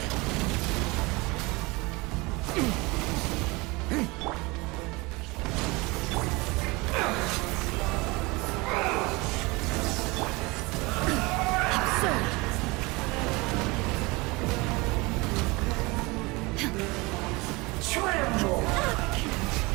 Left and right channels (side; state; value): left; quieter; 24.6 dB